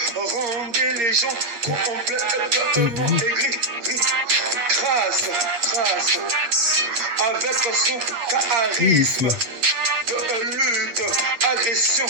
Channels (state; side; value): late; left; 8.2 ms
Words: rendait les gens complètement aigris. Grâce, avec son charisme de lutte, agression,